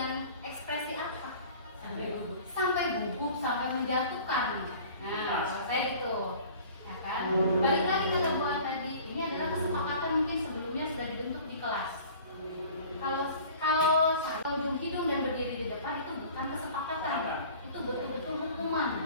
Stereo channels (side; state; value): both; inverted; correlation -0.46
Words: ekspresi apa? Sampai gugup, sampai menjatuhkan. Nah, saya itu. Ya kan? Balik lagi ke buat tadi, ini adalah kesepakatan mungkin sebelumnya sudah dibentuk di kelas. Kalau ujung hidung dan berdiri di depan itu bukan kesepakatan, itu betul-betul hukuman.